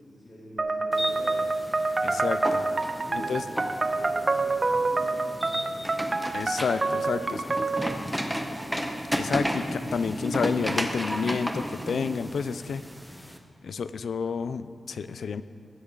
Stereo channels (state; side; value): normal; both; correlation 0.90